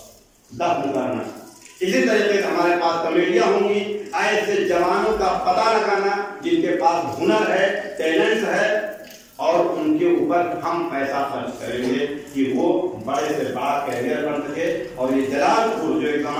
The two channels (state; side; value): identical; both; correlation 1.00